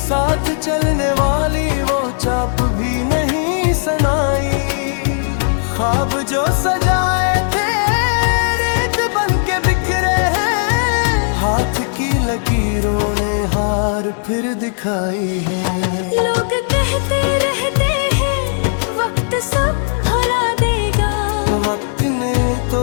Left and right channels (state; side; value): silent; right; digital silence